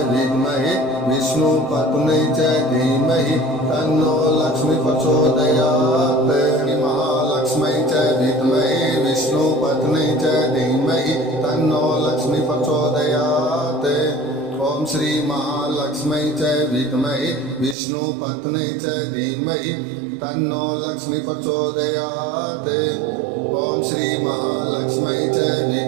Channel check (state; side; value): drops out; left; at 17.8 s